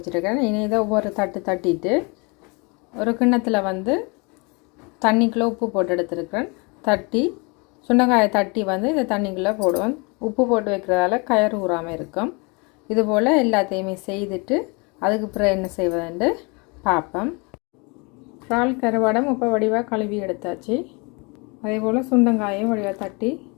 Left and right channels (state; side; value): quieter; right; 30.2 dB